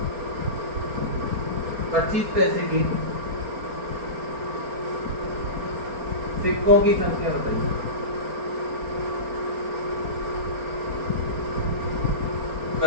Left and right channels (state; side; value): late; left; 4.3 ms